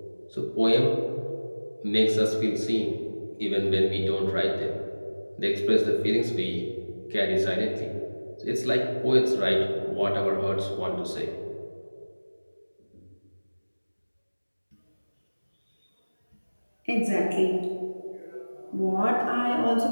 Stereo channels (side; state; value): both; inverted; correlation -1.00